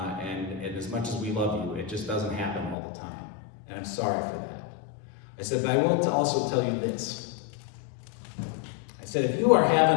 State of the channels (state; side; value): drops out; right; at 2.8 s